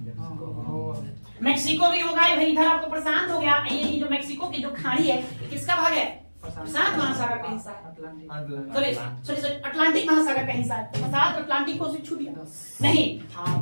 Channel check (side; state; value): both; inverted; correlation -1.00